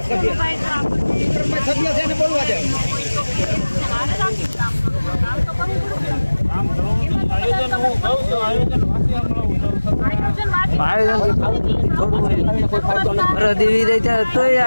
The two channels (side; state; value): both; inverted; correlation -1.00